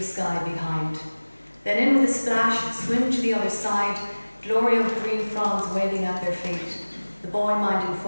sky behind. Then in with a splash, swim to the other side, glory of green fronds waving at their feet. The boy-minding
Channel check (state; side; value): inverted; both; correlation -1.00